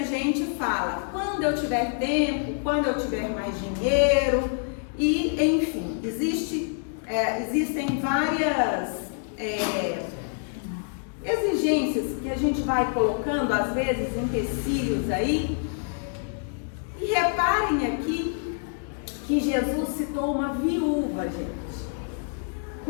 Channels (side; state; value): right; silent; 57 dB below the other